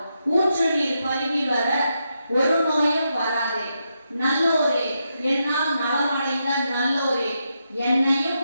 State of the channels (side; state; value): both; inverted; correlation -0.84